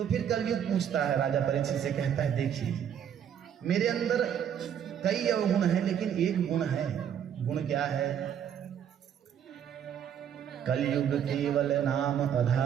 फिर कलयुग पूछता है, राजा परीक्षित से कहता है, देखिए मेरे अंदर कई अवगुण है, लेकिन एक गुण है। गुण क्या है? कलयुग केवल नाम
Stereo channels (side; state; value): left; quieter; 8.9 dB